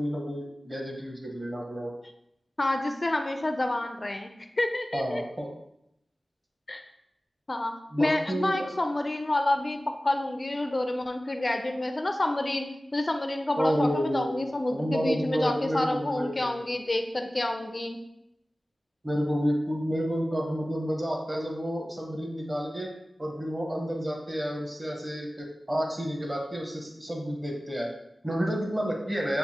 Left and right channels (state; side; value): normal; both; correlation 0.97